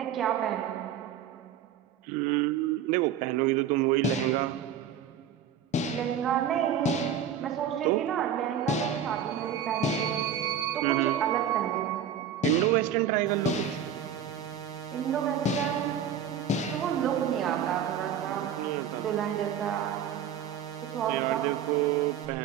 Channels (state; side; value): quieter; left; 8.2 dB